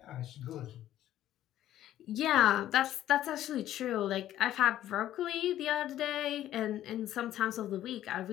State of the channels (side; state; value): right; quieter; 12.7 dB